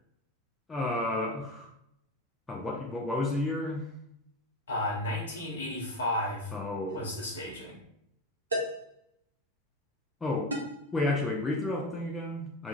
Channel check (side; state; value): both; normal; correlation 0.23